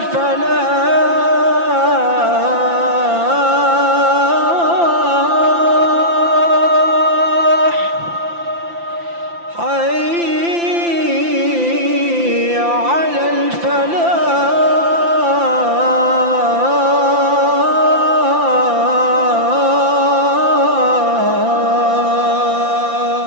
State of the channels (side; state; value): left; late; 5.9 ms